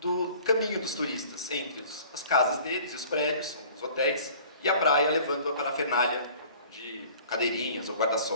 caminho dos turistas, entre as casas deles e os prédios, os hotéis, e a praia levando a parafernália de cadeirinhas ou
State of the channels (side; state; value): both; inverted; correlation -0.49